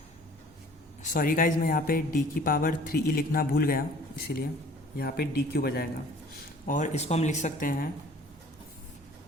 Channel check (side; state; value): both; normal; correlation 0.51